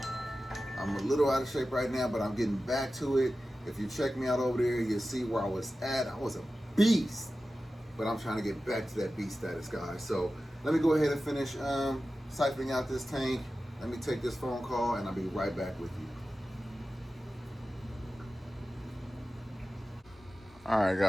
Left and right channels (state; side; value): normal; both; correlation 0.94